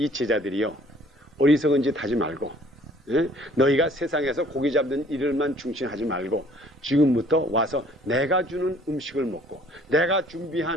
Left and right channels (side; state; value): both; normal; correlation 0.56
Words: 제자들이요. 어리석은 짓 하지 말고 너희가 세상에서 고기 잡는 일을만 중심하지 말고 지금부터 와서 내가 주는 음식을 먹고 내가